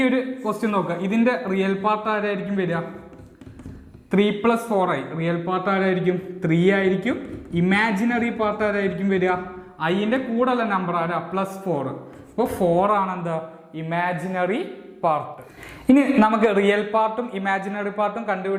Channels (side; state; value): both; identical; correlation 1.00